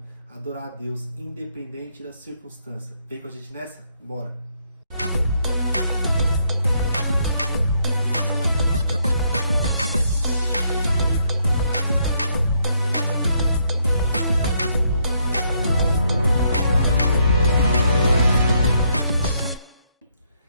adorar a Deus independente da circunstância. Vem com a gente nessa? Bora!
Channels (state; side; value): inverted; both; correlation -0.73